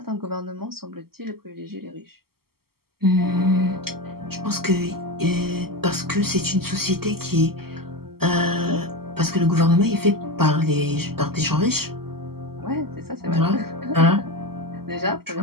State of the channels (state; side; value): late; left; 0.95 ms